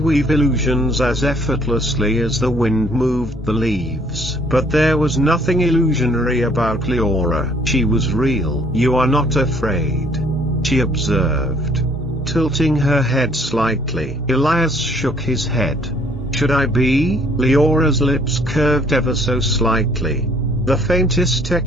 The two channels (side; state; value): both; normal; correlation 0.62